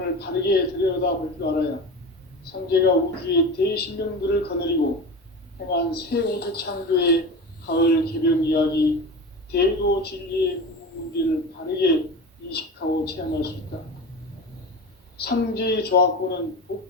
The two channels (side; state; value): both; normal; correlation 0.29